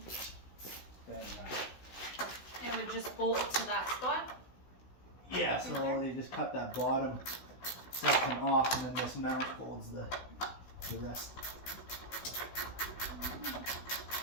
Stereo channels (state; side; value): late; right; 16 ms